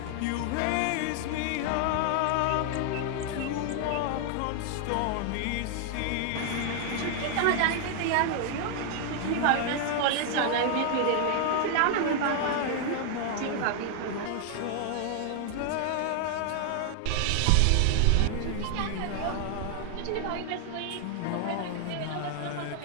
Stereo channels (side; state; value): both; different; correlation 0.00